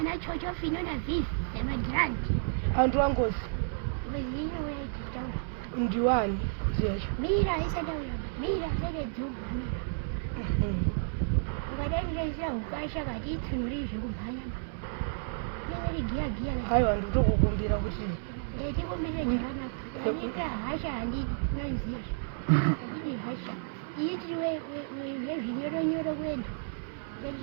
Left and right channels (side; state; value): left; silent; digital silence